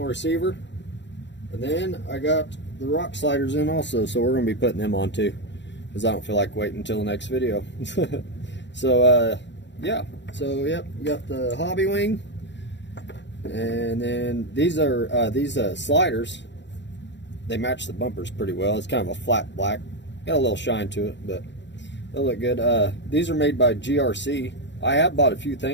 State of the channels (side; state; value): right; late; 0.52 ms